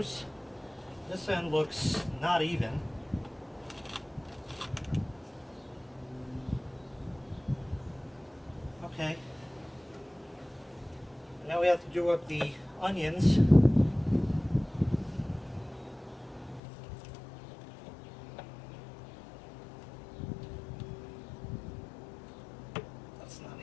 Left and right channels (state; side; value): drops out; right; at 16.6 s